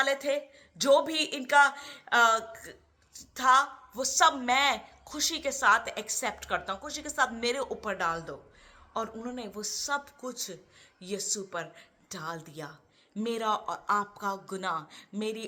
थे, जो भी इनका था, वो सब मैं खुशी के साथ एक्सेप्ट करता हूं, खुशी के साथ मेरे ऊपर डाल दो। और उन्होंने वो सब कुछ यीशु पर डाल दिया। मेरा और आपका गुनाह, मेरी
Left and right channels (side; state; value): both; identical; correlation 1.00